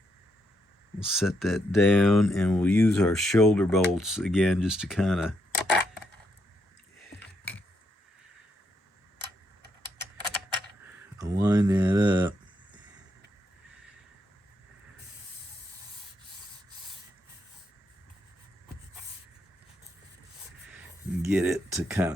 set that down, and we'll use our shoulder bolts again just to kind of align that up. Get it to kind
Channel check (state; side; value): normal; both; correlation 0.78